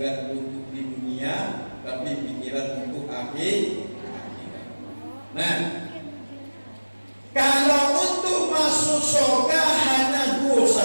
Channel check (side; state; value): both; inverted; correlation -1.00